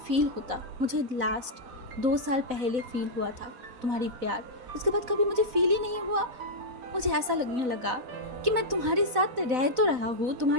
होता। मुझे लास्ट 2 साल पहले फील हुआ था तुम्हारी प्यार, उसके बाद कभी मुझे फील ही नहीं हुआ। मुझे ऐसा लगने लगा कि मैं तुम्हारे साथ रह तो रहा हूँ,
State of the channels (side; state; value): left; late; 4.0 ms